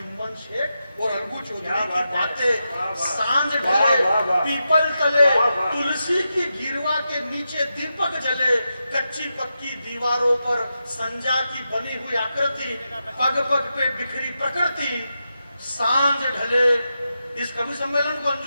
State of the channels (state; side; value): inverted; both; correlation -0.88